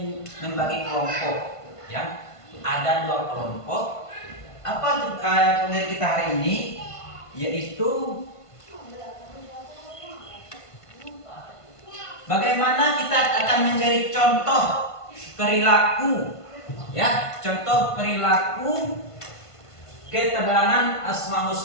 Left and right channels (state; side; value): late; right; 1.5 ms